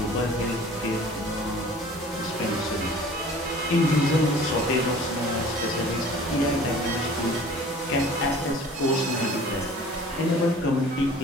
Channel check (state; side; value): normal; both; correlation 0.47